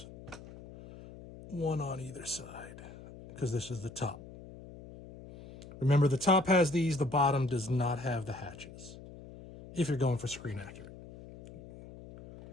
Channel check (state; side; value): noise; left; hum, 16 dB below the sound